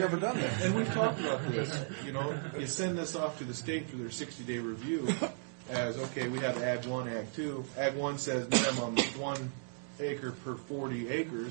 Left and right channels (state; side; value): silent; left; digital silence